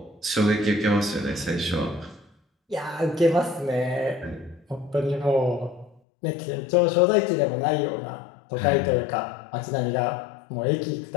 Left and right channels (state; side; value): drops out; right; at 6.0 s